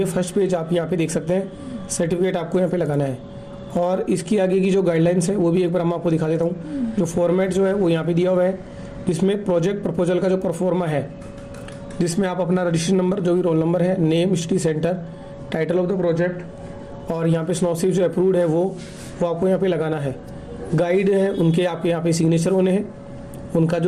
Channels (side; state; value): both; identical; correlation 1.00